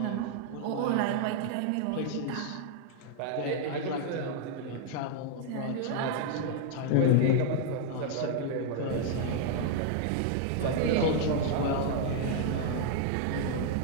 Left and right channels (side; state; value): both; different; correlation -0.01